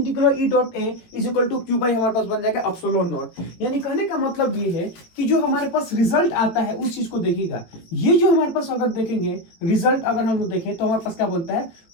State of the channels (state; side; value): late; right; 17 ms